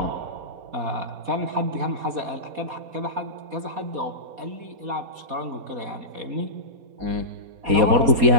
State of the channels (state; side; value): late; left; 4.2 ms